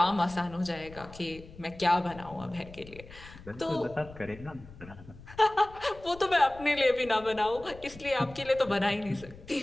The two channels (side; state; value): left; noise; rumble, 18 dB below the sound